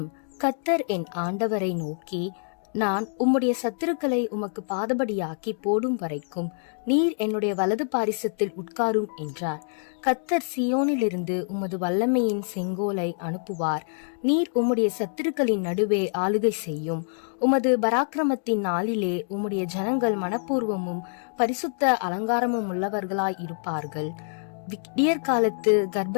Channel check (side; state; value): right; silent; digital silence